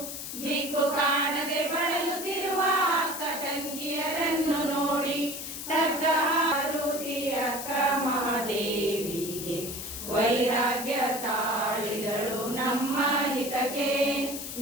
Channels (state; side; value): noise; left; hiss, 7 dB below the sound